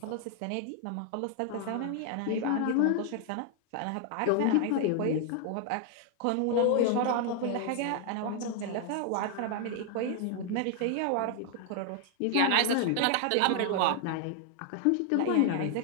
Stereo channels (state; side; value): different; both; correlation 0.00